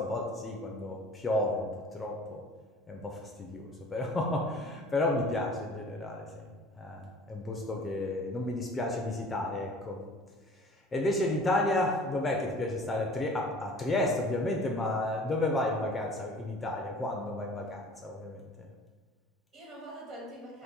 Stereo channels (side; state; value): both; normal; correlation 0.47